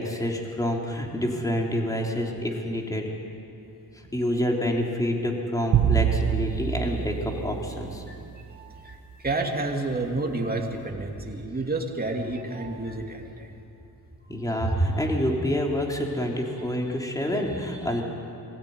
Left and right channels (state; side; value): normal; both; correlation 0.59